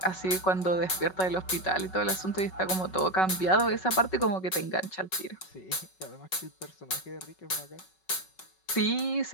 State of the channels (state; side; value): late; right; 5.3 ms